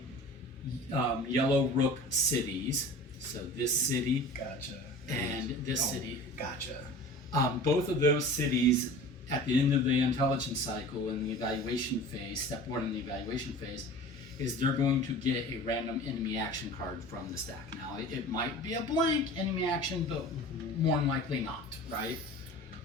yellow rook cities, so this city Gotcha. and this city, Gotcha. both of those cities at the end of the intelligence cycle in the evaluation phase, step 1 in the evaluation phase, is they're going to get a random enemy action card from the stack. Now, it might be a blank enemy action, but more than likely not, right?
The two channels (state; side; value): normal; both; correlation 0.39